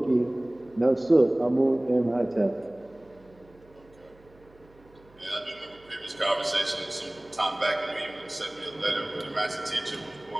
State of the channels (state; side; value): noise; right; hum, 28 dB below the sound